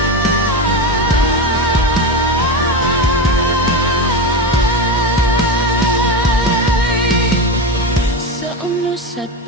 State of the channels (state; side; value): normal; both; correlation 0.18